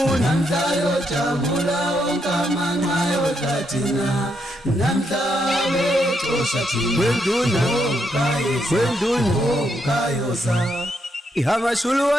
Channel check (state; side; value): normal; both; correlation 0.78